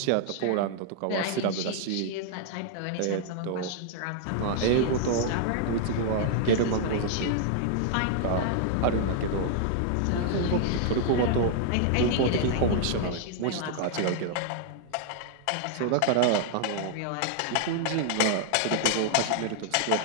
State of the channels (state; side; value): different; both; correlation 0.00